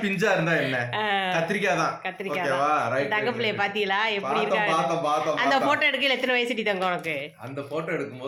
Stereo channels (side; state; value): both; identical; correlation 1.00